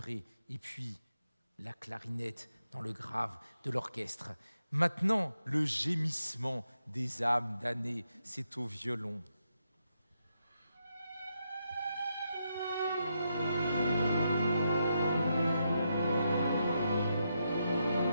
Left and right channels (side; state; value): both; inverted; correlation -0.82